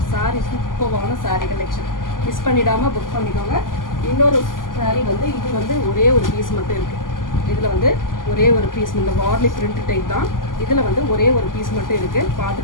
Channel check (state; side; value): late; right; 0.90 ms